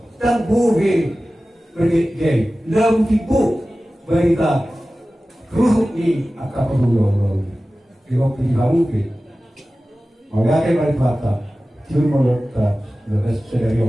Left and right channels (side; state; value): both; normal; correlation 0.96